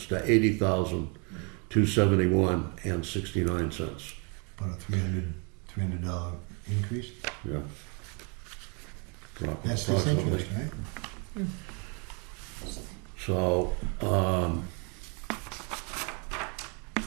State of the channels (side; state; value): left; quieter; 35.0 dB